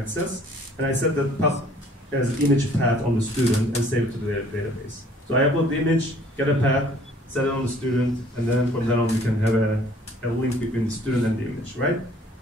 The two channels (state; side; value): normal; both; correlation 0.56